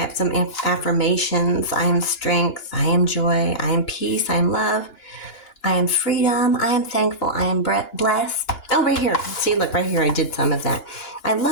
some affirmations. I am strength, I am joy, I am peace, I am love, I am freedom, I am thankful, I am blessed. Oh, right here. See, look, right here I did some of that. I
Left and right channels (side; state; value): right; late; 2.9 ms